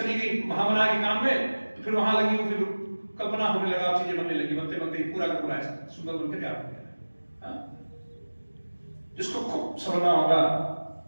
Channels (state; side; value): inverted; both; correlation -1.00